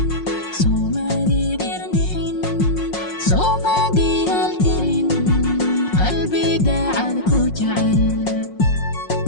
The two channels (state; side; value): late; right; 5.5 ms